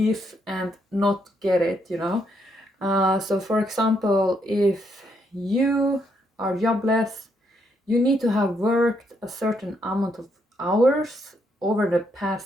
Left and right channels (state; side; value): normal; both; correlation 0.75